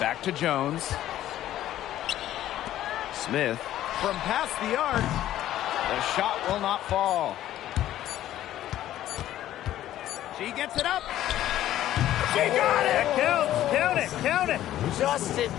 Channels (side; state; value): right; quieter; 13.0 dB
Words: to Jones. Smith from past the arc. The shot will not fall. She gets it up. She got it! Count it! Count it! Just in